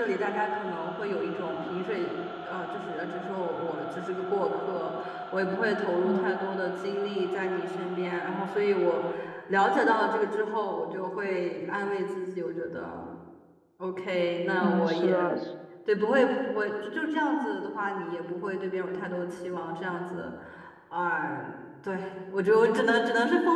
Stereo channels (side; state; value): both; identical; correlation 1.00